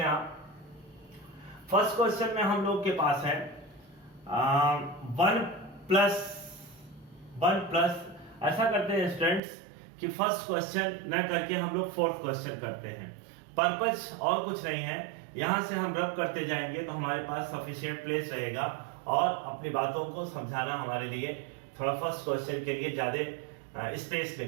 आप। फर्स्ट क्वेश्चन में हम लोग के पास है 1 प्लस ऐसा करते हैं स्टूडेंट्स कि फर्स्ट क्वेश्चन न करके हम लोग फोर्थ क्वेश्चन करते हैं। पर्पस और कुछ नहीं है, यहां से हम रब करते जाएंगे तो हमारे पास सफिशिएंट प्लेस रहेगा और अपनी बातों को समझाना हमारे लिए थोड़ा फर्स्ट क्वेश्चन के लिए ज्यादा स्पेस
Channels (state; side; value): drops out; left; at 9.4 s